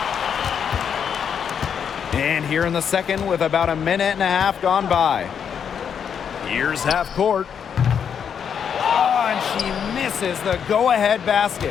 And here in the second with about a minute and a half gone by. Here's half court. Oh, and she misses the go-ahead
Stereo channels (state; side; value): quieter; right; 7.6 dB